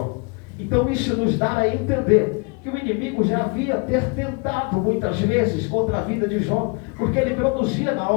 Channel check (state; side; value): quieter; right; 33.2 dB